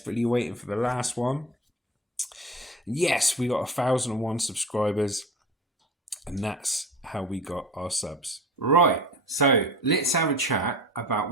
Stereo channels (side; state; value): both; normal; correlation 0.35